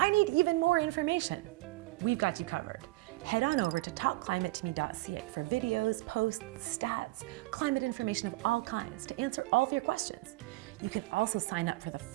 need even more information. We've got you covered. Head on over to talkclimatetome.ca for videos, posts, stats, climate information of all kinds to answer all of your questions. You can also sign up for the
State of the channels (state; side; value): quieter; left; 20.4 dB